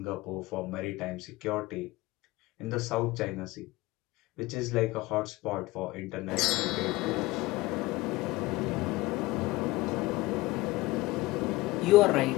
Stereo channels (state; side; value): quieter; right; 19.7 dB